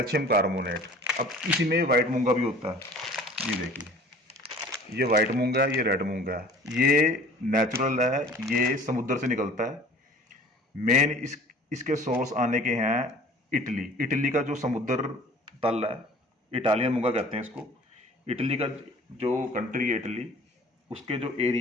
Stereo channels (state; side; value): normal; both; correlation 0.48